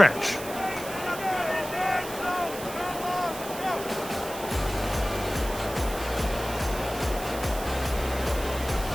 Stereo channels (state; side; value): noise; right; hiss, 12 dB below the sound